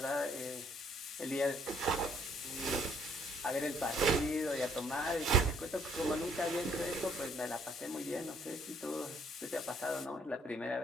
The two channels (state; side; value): normal; both; correlation 0.64